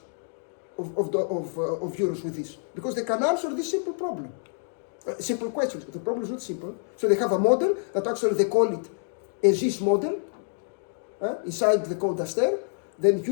of euros with this, because they can answer this simple problem. Simple questions. The problem is not simple. So they have a model that actually they call it a ZIS model inside the code Aster, then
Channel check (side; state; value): right; silent; digital silence